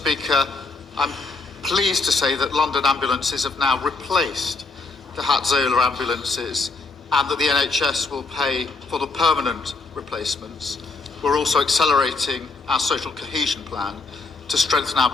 I'm pleased to say that London ambulances have now replaced the Hatzola ambulances and that the NHS will pay for the permanent replacements. We're also accelerating our social cohesion plan to strengthen our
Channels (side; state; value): right; quieter; 3.9 dB